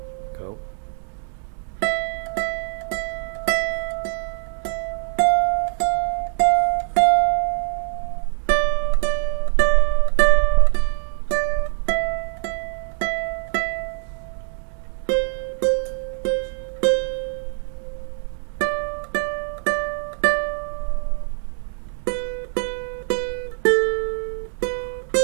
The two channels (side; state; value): left; silent; 63 dB below the other